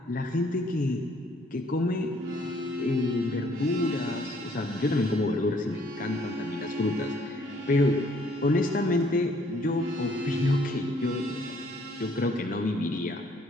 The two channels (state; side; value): normal; both; correlation 0.63